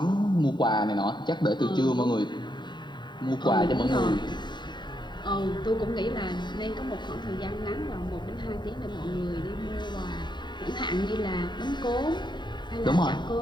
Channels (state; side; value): late; right; 0.22 ms